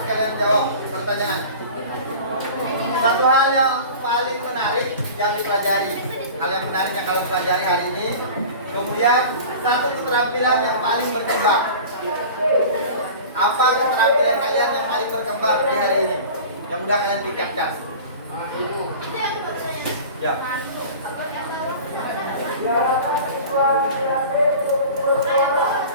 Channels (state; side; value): inverted; both; correlation -0.38